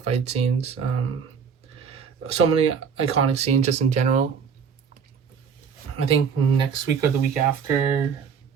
fight scenes, so many iconic scenes just in general. I think next week or the week after,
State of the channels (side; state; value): left; quieter; 6.5 dB